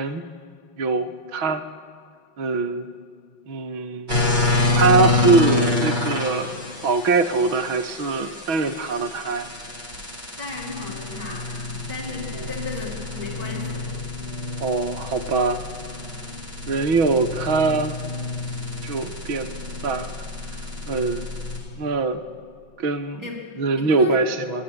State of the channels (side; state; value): left; late; 5.5 ms